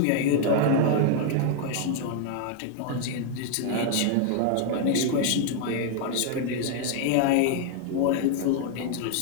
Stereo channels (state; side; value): different; both; correlation 0.00